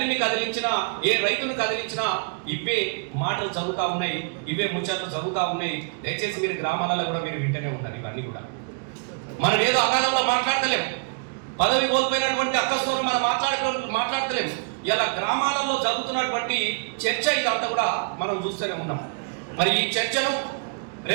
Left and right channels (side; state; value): left; quieter; 38.3 dB